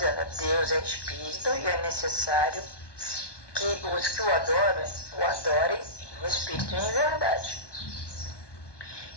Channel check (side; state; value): right; late; 1.2 ms